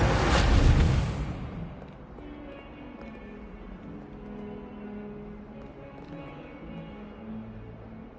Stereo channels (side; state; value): both; identical; correlation 1.00